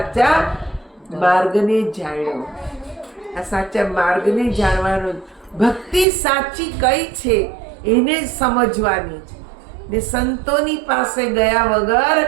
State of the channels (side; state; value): left; drops out; at 6.1 s